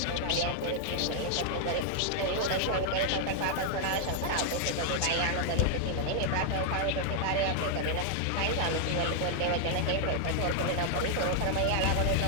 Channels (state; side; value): different; both; correlation 0.00